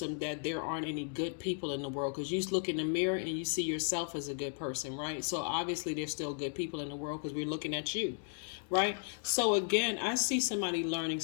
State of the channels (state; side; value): silent; right; 54 dB below the other